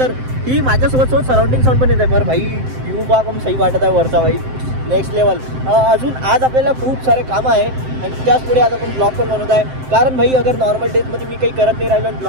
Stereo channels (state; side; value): late; left; 7.7 ms